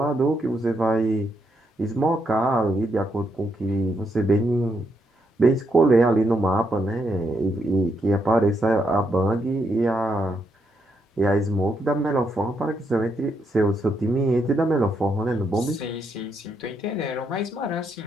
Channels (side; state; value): both; normal; correlation 0.78